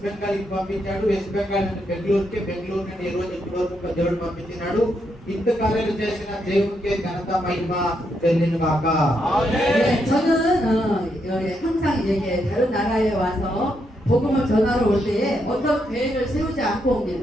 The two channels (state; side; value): normal; both; correlation 0.79